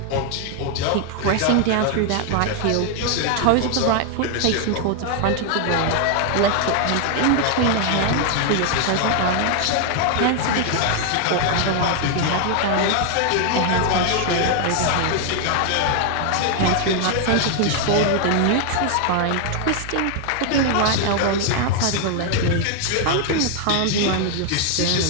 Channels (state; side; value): different; both; correlation 0.00